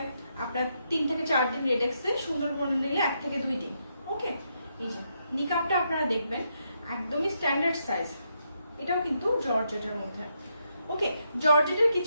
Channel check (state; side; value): inverted; both; correlation -0.80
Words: আপনার 3 থেকে 4 দিন রেডেক্সে, সুন্দরবনে নিলে 1 থেকে 2 দিন। ওকে, এই যে নিকাপটা আপনারা দেখবেন একদমই স্ট্যান্ডার্ড সাইজ, এটাও কিন্তু জর্জেটের মধ্যে। ওকে, জর্জেটের